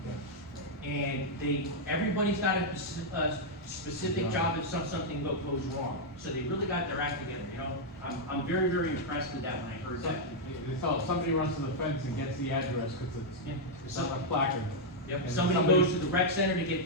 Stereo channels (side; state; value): both; normal; correlation -0.03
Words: And everybody's got a specific job if something goes wrong. So they really got their act together, you know? I'm very, very impressed with that when I heard that. They saw somebody runs to the fence and gets the address because it's on a placard. Yep, And somebody goes to the rec center to get